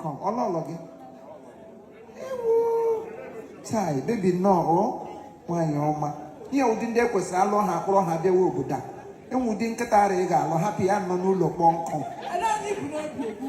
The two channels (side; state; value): both; identical; correlation 1.00